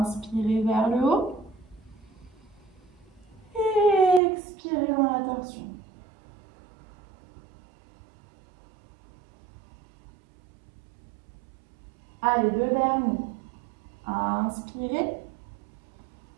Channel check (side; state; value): left; drops out; at 4.2 s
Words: vers le haut. Et expirez dans la torsion. Allez, 2 derniers. Inspirez.